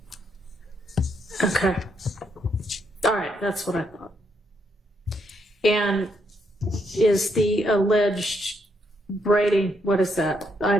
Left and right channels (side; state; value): both; normal; correlation 0.76